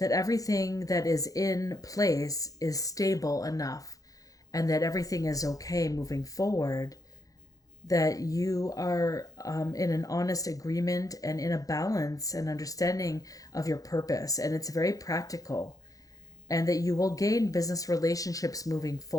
everything that is in place is stable enough, and that everything is okay moving forward, that you are in an honest agreement and in a balance and understanding of your purpose. And it's very practical, and that you will gain business relationships moving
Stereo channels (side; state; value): right; late; 0.17 ms